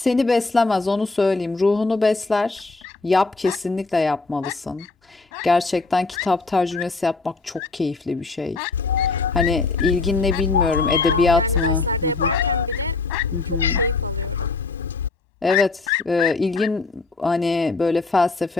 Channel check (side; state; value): right; quieter; 3.8 dB